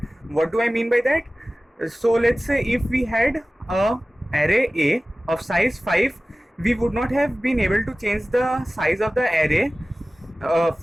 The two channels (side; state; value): both; normal; correlation 0.97